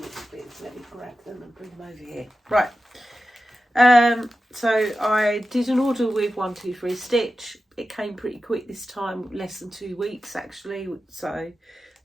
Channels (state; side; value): normal; both; correlation 0.93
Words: of bits. Let me grab them and bring them over here. Right. So I did an order with 123 Stitch. It came pretty quick this time, less than 2 weeks actually, so